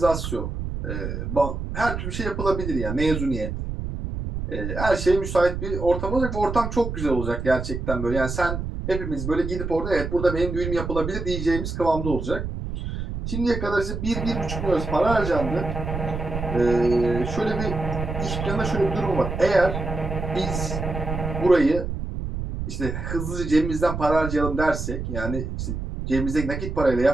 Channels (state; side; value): noise; right; rumble, 5 dB below the sound